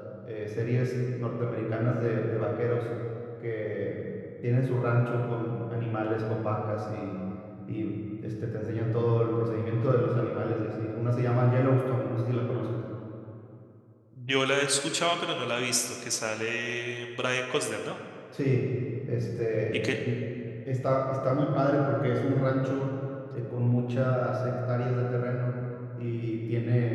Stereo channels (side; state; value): both; identical; correlation 1.00